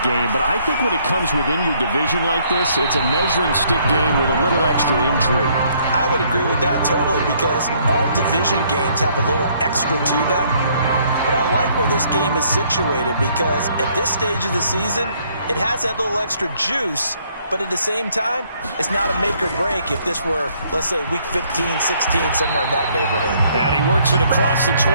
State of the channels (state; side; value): inverted; both; correlation -0.66